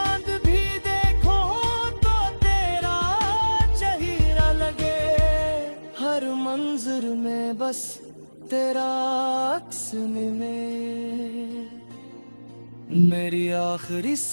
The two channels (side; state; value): both; inverted; correlation -1.00